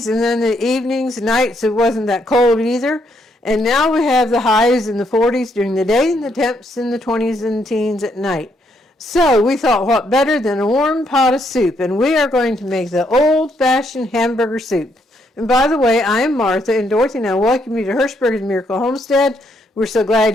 and then the evenings, nights, it wasn't that cold either. And now we have the highs in the 40s during the day and the temps in the 20s and teens at night. So we thought, what better than a warm pot of soup? And we are going to make the old-fashioned hamburger soup. And by the way, I am Martha, and Dorothy and I welcome you to Hirschberg's Miracle Homestead. We're so glad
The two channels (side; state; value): both; normal; correlation 0.74